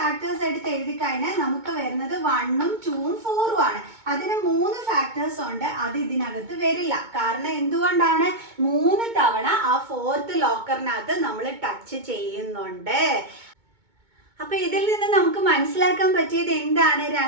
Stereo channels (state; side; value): late; left; 2.2 ms